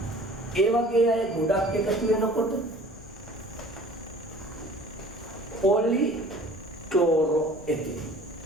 ඒ වගේ අය ගොඩක් එකතු වෙනකොට පොලි ක්ලෝරෝ එතින්.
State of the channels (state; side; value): noise; left; hum, 27 dB below the sound